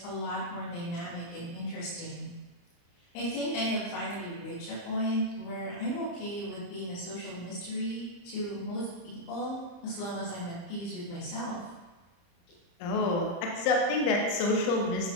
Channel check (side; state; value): right; late; 35 ms